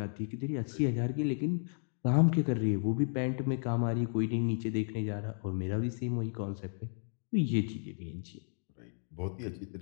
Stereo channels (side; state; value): right; silent; digital silence